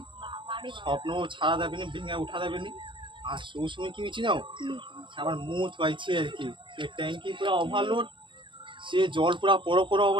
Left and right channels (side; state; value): left; late; 0.24 ms